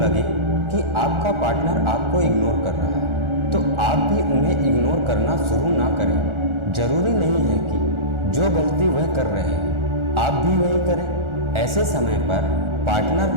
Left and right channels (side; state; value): left; late; 1.4 ms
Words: कि आपका पार्टनर आपको इग्नोर कर रहा है तो आप भी उन्हें इग्नोर करना शुरू ना करें। जरूरी नहीं है कि जो गलती वह कर रहे हैं आप भी वही करें। ऐसे समय पर पार्टनर